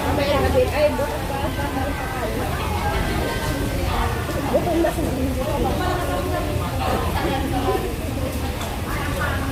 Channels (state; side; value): identical; both; correlation 1.00